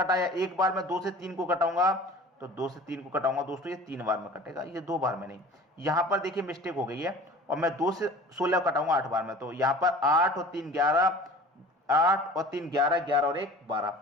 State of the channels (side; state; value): both; normal; correlation 0.42